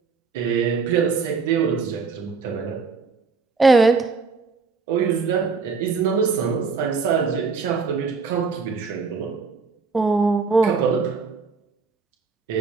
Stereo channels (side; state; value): left; quieter; 4.8 dB